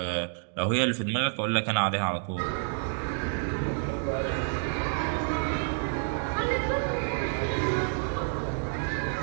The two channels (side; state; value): left; silent; 59 dB below the other